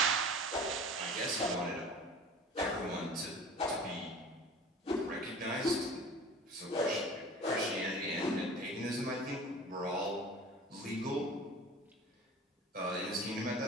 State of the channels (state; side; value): normal; both; correlation 0.41